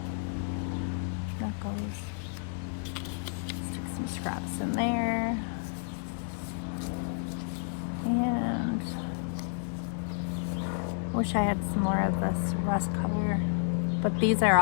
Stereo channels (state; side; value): silent; right; digital silence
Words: Stick some scraps in there. And I wish I had some more of this rust color, but these are